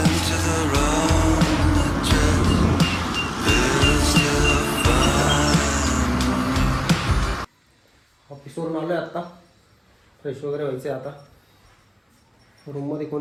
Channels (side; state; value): both; identical; correlation 1.00